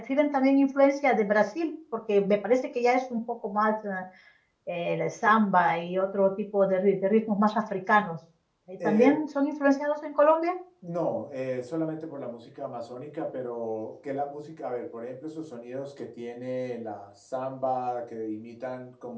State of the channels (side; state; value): both; identical; correlation 1.00